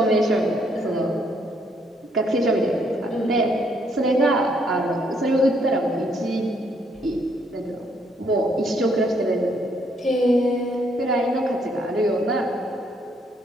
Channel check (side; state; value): both; normal; correlation 0.70